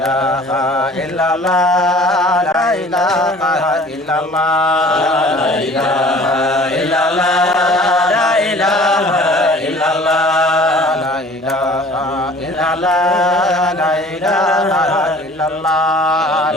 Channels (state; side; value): normal; both; correlation 0.48